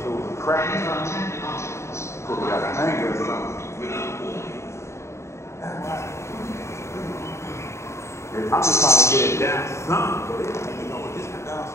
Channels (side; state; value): right; late; 0.13 ms